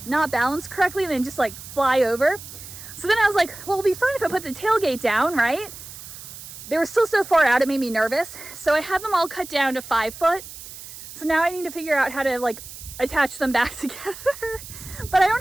not balanced correctly and then just like fly over. So then I was like, well, it'll be fine if I put the tailgate down, right? They were still so far out, it made me nervous. So I had them all cut down to 5 foot. So now I need to figure out how to like attach them back together. But I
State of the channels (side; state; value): right; noise; hiss, 14 dB below the sound